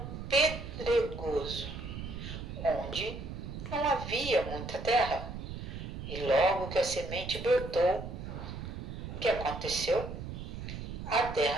pedregoso, onde não havia muita terra. E logo que a semente brotou, o que aconteceu? A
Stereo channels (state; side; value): noise; right; rumble, 8 dB below the sound